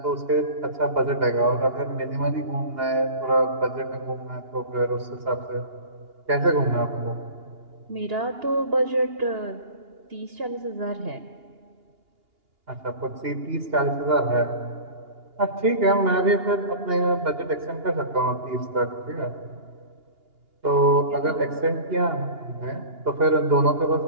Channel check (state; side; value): late; left; 2.8 ms